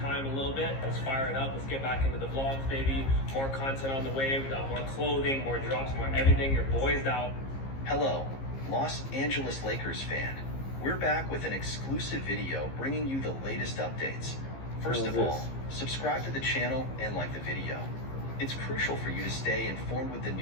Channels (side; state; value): right; late; 15 ms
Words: time a little bit. Let's fire it up. Let's get back into the vlogs, baby. More content on the way. We got more clothing, more drops, more everything. Your boy's out. Hello, Los Angeles Lakers fan. We're back with an exclusive video bringing you the latest updates. First of all, subscribe to the channel and like the video. It's crucial for you to stay informed with the